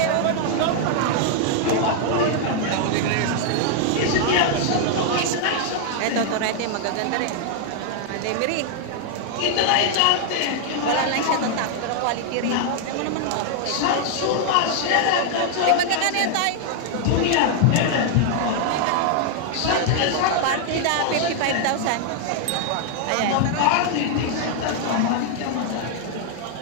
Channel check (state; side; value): different; both; correlation 0.00